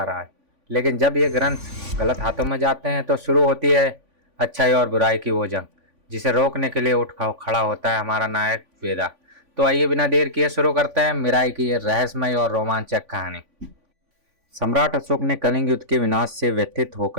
राज। लेकिन जब ये ग्रंथ गलत हाथों में जाते हैं तो शुरू होती है अच्छाई और बुराई की वो जंग, जिसे रोकने के लिए खड़ा होता है हमारा नायक वेदा। तो आइए बिना देर किए शुरू करते हैं मिराई की ये रहस्यमय और रोमांचक कहानी। सम्राट अशोक ने कलिंग युद्ध के विनाश से व्यथित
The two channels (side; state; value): left; late; 3.5 ms